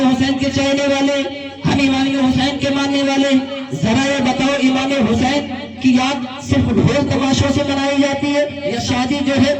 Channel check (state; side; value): identical; both; correlation 1.00